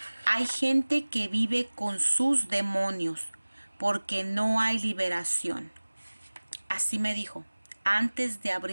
hay gente que vive con sus demonios porque no hay liberación. Así me dijo. Antes de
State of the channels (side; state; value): both; inverted; correlation -1.00